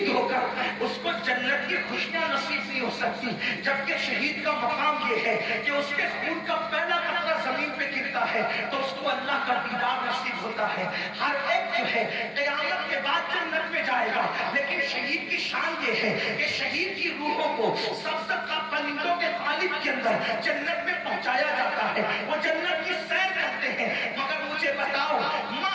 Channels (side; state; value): both; identical; correlation 1.00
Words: ہو کر اس کو جنت کی خوشیاں نصیب نہیں ہو سکتی، جبکہ شہید کا مقام یہ ہے کہ اس کے خون کا پہلا قطرہ زمین پہ گرتا ہے تو اس کو اللہ کا دیدار نصیب ہوتا ہے۔ ہر ہے قیامت کے بعد جنت میں جائے گا، لیکن شہید کی شان یہ ہے کہ شہید کی روحوں کو سبزت کا پرندوں کے قالب کے اندر جنت میں پہنچایا جاتا ہے، وہ جنت کی سیر کرتے ہیں۔ مگر مجھے بتاؤ،